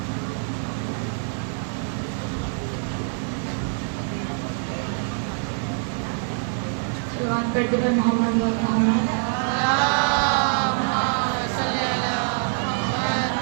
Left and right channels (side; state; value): left; silent; 55 dB below the other